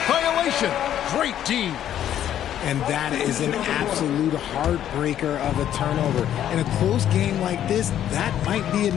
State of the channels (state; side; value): quieter; right; 10.9 dB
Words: violation. Great D. And that is an absolute heartbreaker of a turnover. In a close game like this, that might be